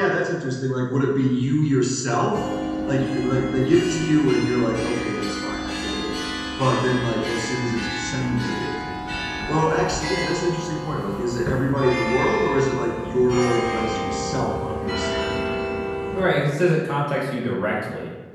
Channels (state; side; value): identical; both; correlation 1.00